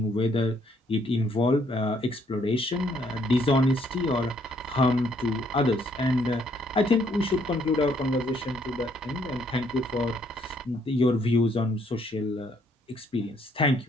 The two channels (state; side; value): normal; both; correlation 0.68